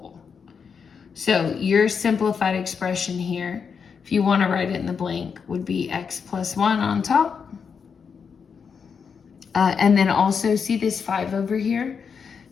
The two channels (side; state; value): right; quieter; 6.2 dB